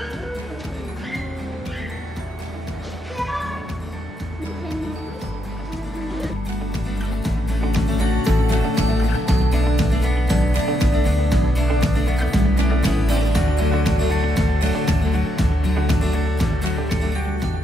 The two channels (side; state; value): both; normal; correlation 0.80